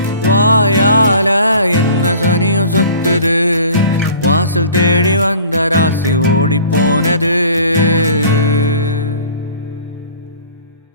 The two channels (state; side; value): inverted; both; correlation -0.47